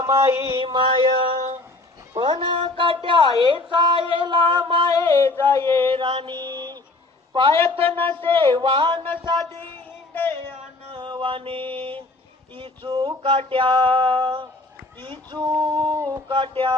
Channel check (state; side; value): quieter; right; 3.0 dB